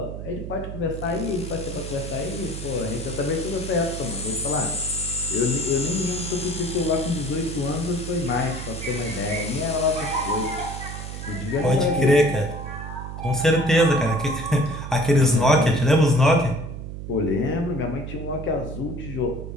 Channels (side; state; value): right; noise; hum, 8 dB below the sound